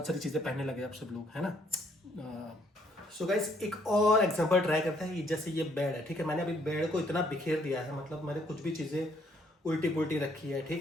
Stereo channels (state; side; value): normal; both; correlation 0.67